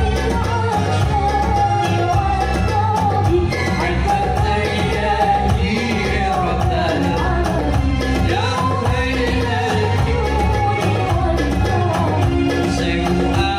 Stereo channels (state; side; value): identical; both; correlation 1.00